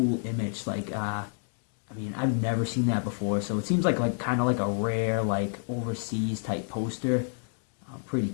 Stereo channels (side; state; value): right; silent; 59 dB below the other